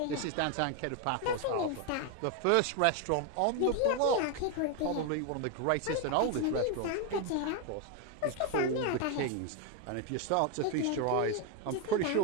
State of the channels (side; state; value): both; different; correlation 0.01